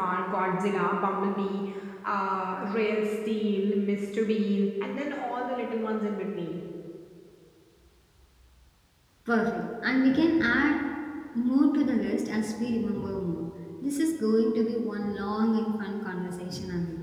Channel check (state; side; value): identical; both; correlation 1.00